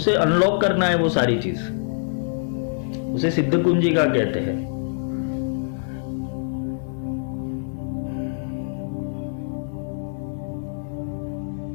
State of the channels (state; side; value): silent; right; digital silence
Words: अनलॉक करना है। वो सारी चीज उसे सिद्ध कुंजिका कहते हैं।